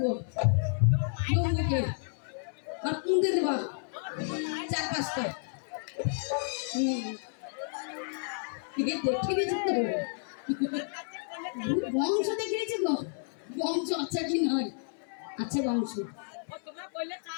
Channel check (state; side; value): silent; right; 57 dB below the other